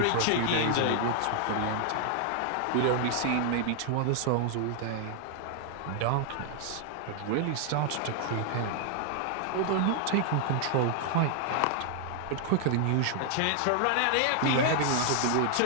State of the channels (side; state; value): both; different; correlation 0.00